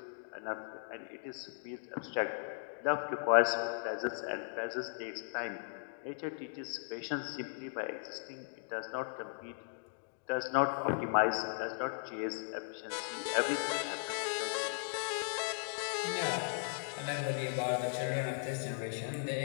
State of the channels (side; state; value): right; silent; digital silence